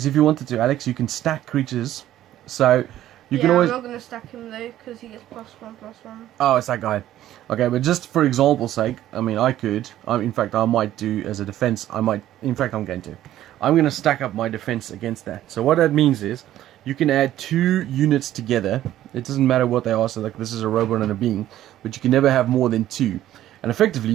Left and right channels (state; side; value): quieter; left; 13.0 dB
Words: if you wanted to, Alex, you can stack creatures. So you Yeah, can always... I'm not gonna stack him though, because he gets +1/+1. Oh, it's that guy. Okay, but just for example's sake, I mean, I could. In fact, I might do as a defense. In fact, I'm going to. I'm going to stack up my defense against that. So what that means is, you can add 2 units together. It doesn't matter what they are. So like this is a robot and a being, but you can never have more than 2. And effectively,